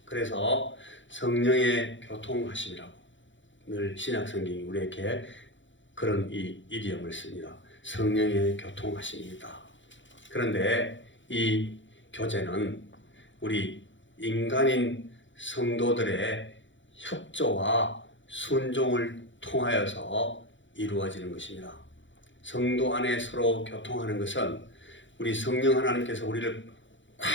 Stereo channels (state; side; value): late; right; 0.55 ms